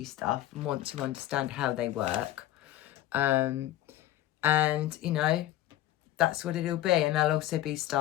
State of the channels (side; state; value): right; quieter; 14.3 dB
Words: stuff and want to understand how they work. And, you know, that's what it'll be. And there'll also be